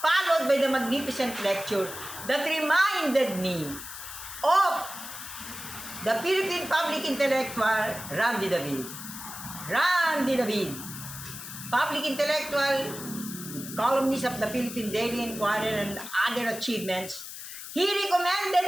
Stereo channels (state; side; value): noise; left; hiss, 10 dB below the sound